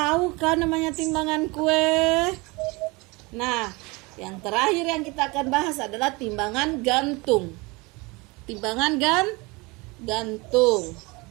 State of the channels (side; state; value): left; quieter; 25.6 dB